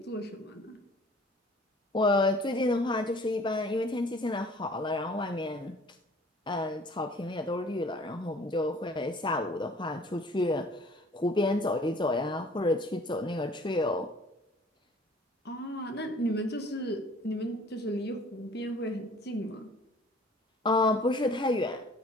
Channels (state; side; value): normal; both; correlation 0.52